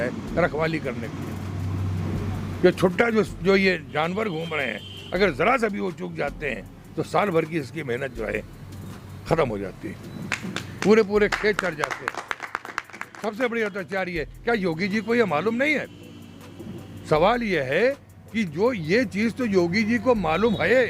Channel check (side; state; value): both; identical; correlation 1.00